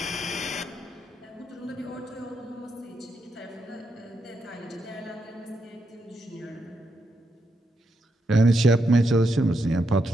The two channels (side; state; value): both; normal; correlation 0.82